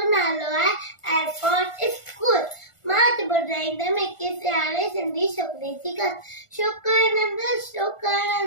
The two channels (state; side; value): late; right; 1.4 ms